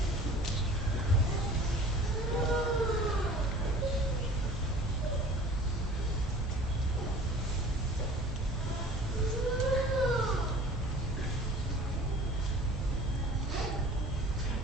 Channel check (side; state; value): both; normal; correlation 0.46